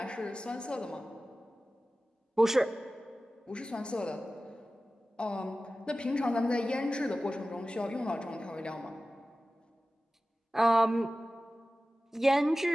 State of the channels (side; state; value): both; normal; correlation 0.96